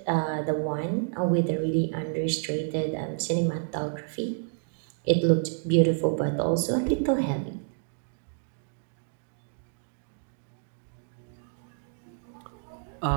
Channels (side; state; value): left; silent; digital silence